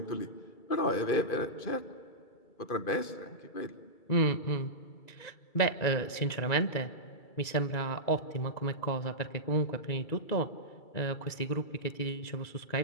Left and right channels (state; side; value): late; right; 2.3 ms